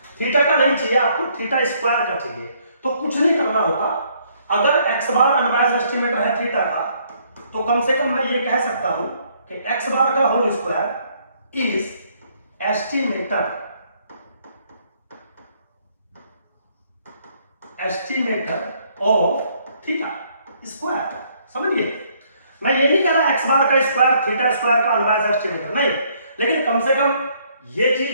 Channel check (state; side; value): inverted; both; correlation -0.67